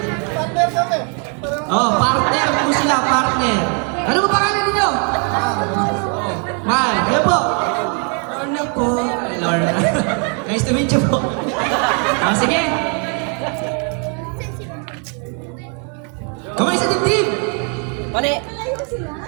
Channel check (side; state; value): left; quieter; 39.3 dB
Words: Partner po sila, partner. Ano ba pangalan ninyo? Mal, kayo po. Lorna po. Lorna. Nice to meet you po. Sige. Kamay sa dibdib. Mali.